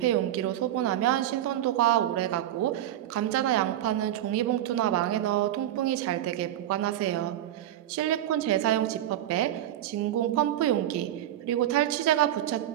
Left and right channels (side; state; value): left; quieter; 12.4 dB